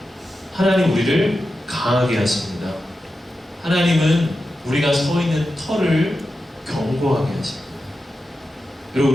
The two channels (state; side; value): normal; both; correlation 0.91